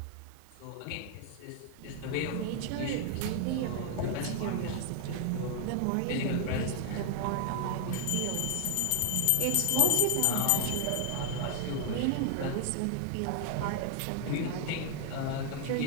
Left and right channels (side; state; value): both; different; correlation 0.00